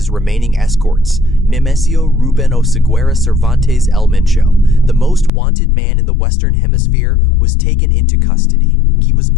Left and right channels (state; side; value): drops out; right; at 5.3 s